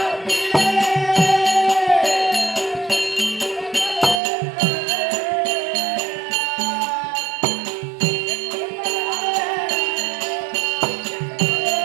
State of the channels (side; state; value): left; drops out; at 4.2 s